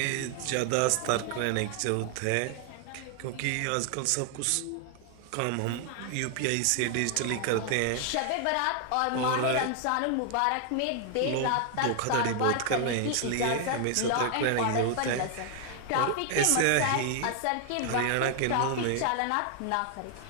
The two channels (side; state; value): both; different; correlation 0.00